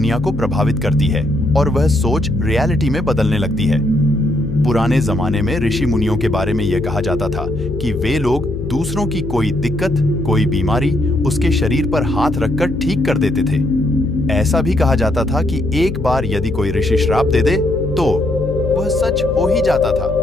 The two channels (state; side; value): noise; left; hum, 7 dB below the sound